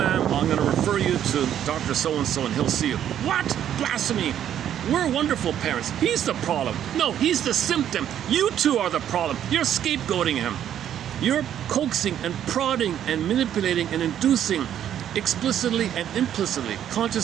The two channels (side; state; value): left; quieter; 10.3 dB